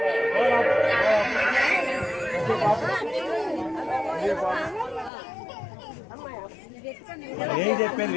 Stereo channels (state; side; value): drops out; right; at 5.1 s